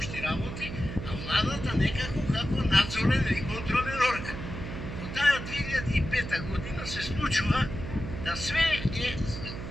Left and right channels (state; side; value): noise; right; hum, 8 dB below the sound